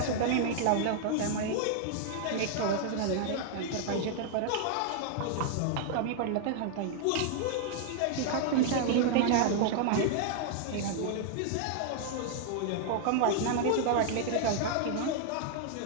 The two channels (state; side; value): different; both; correlation 0.00